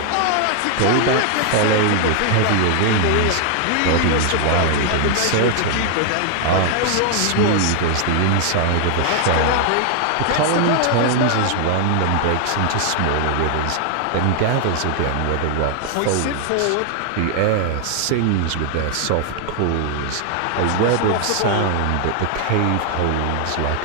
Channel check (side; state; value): both; different; correlation 0.00